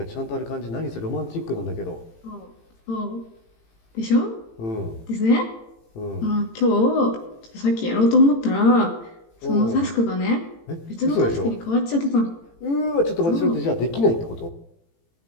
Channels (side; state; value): right; late; 18 ms